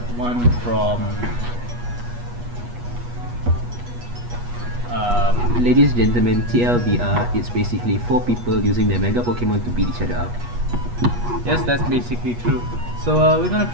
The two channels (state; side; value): late; left; 8.3 ms